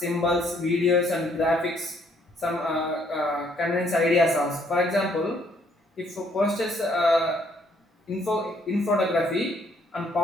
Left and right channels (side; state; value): both; normal; correlation 0.67